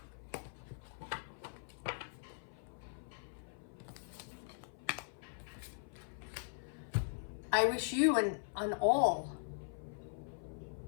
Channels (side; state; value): right; silent; 51 dB below the other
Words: I wish you and all